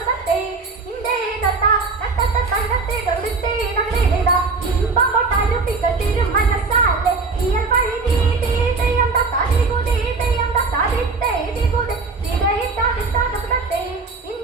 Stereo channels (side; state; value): left; quieter; 4.2 dB